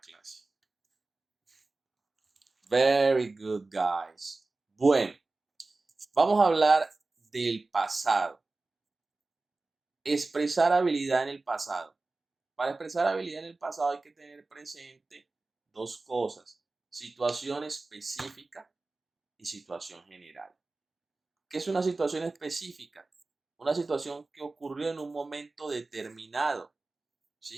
Very good, guys. Bueno, vamos a hablar del pasado. Expresar habilidad en el pasado. Para expresar habilidad en el pasado hay que tener presente dos cosas: situación específica y situación general. ¿Qué es una situación específica? Una situación que ocurrió en un momento determinado,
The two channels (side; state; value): left; quieter; 3.4 dB